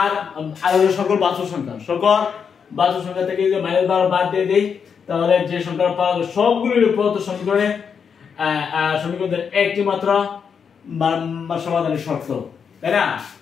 হলো সকল বাস্তব সংখ্যা থেকে যদি -12 বাদ দিয়ে দেই তাহলে যে সংখ্যা পাওয়া যাবে সবগুলোর প্রদত্ত সমীকরণের একটি মাত্র সমাধানের শর্ত, তাই না?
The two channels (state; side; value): quieter; right; 6.6 dB